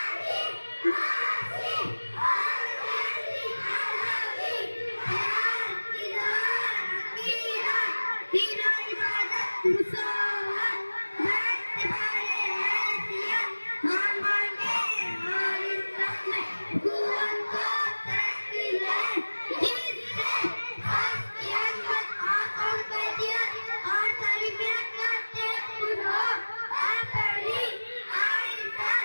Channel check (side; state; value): both; inverted; correlation -1.00